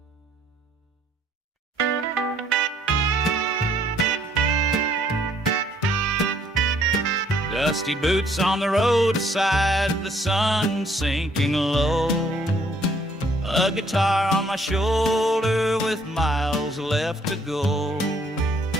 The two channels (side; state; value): both; normal; correlation 0.64